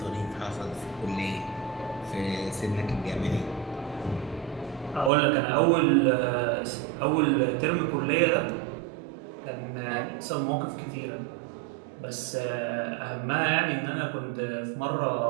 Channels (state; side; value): drops out; left; at 5.1 s